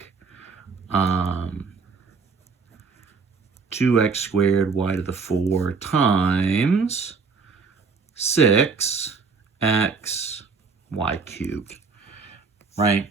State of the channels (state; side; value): quieter; left; 5.0 dB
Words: 2x squared y to the 4 times 6x y cubed, right?